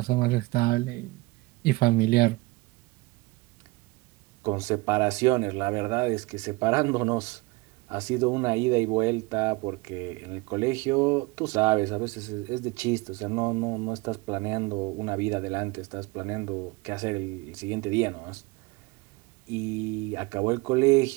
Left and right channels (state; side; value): quieter; left; 23.7 dB